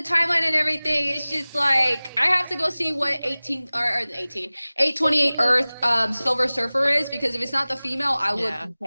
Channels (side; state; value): both; inverted; correlation -0.99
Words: and everything, it's just like I have to go see what 828 Earth Silver Surfer is, because if it's not the female, I would